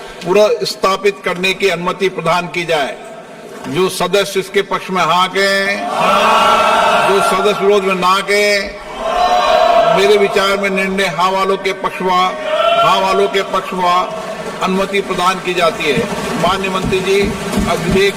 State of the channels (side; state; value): both; identical; correlation 1.00